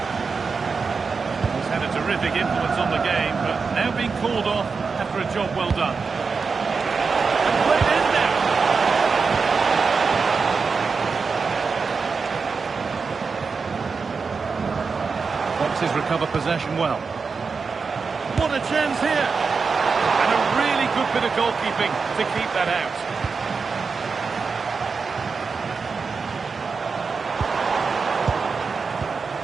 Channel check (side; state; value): left; quieter; 5.0 dB